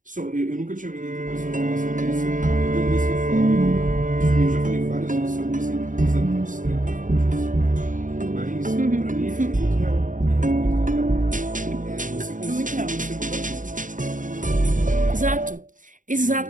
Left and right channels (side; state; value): left; late; 0.38 ms